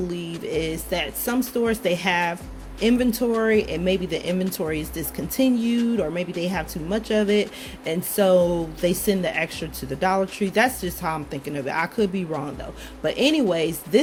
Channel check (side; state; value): both; identical; correlation 1.00